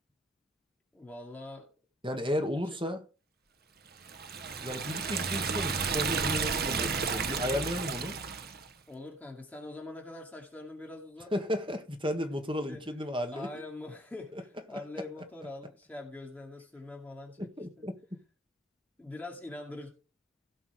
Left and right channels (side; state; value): both; normal; correlation 0.53